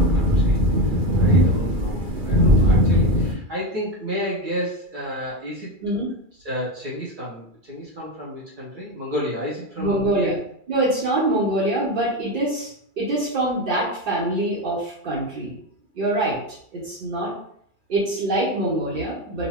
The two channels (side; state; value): left; late; 2.3 ms